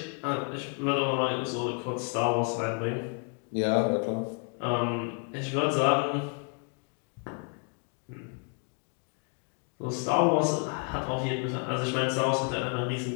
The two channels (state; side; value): quieter; right; 37.7 dB